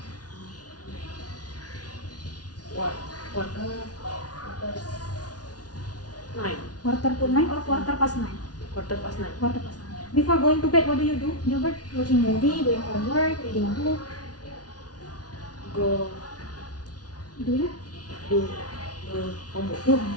quarter 9. quarter to 9 or quarter past 9? Quarter past 9. Quarter past 9. Before going to bed, what do you do, Gilbert? Watching movie, doing homework, reading a book. Go Do you? do homework. Do.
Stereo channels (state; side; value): late; right; 0.69 ms